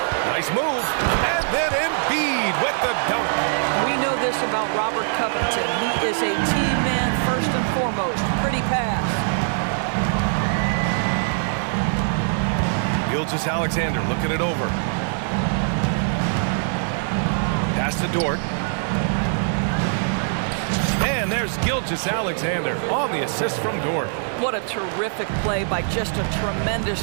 Nice move. And then Embiid with the dunk. We know this about Robert Covington. He is a team man first and foremost. Pretty pass. Gilgeous-Alexander looking it over. Pass to Dort. And there's Gilgeous-Alexander on the assist from Dort. What a terrific play by just a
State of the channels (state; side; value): silent; left; digital silence